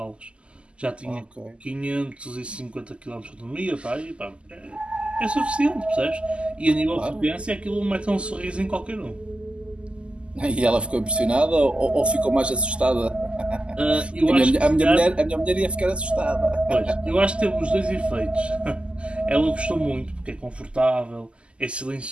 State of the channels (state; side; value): late; left; 0.053 ms